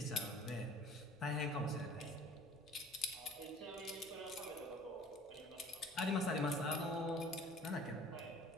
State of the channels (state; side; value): normal; both; correlation 0.48